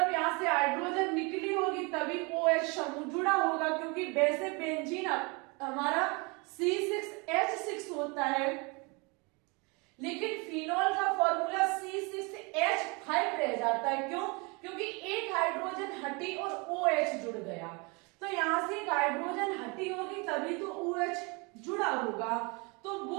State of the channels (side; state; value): left; quieter; 29.4 dB